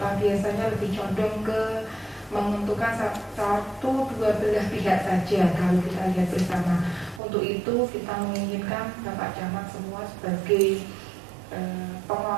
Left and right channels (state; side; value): drops out; left; at 7.2 s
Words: biasanya lebih condong ke menentukan satu dua belah pihak saja kalau kita lihat bersama. Untuk itu kita menginginkan Bapak Camat semua sebagai